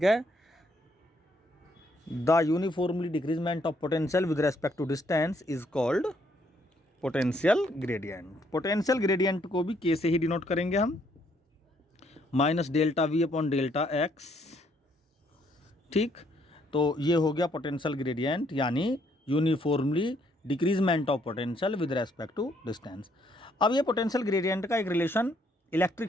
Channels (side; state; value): both; normal; correlation 0.69